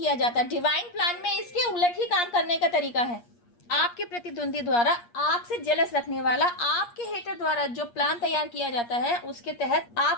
जाता। डिवाइन प्लान में इसके उलट ही काम करने का तरीका है। आपके प्रतिद्वंदी द्वारा, आपसे जेलस रखने वाला, आपके हेटर द्वारा जो प्लान तैयार किया जाता है उसके तहत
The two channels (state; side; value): late; right; 8.5 ms